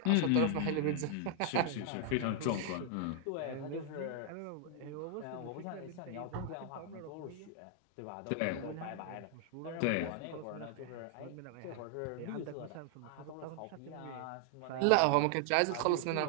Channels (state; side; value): different; both; correlation 0.00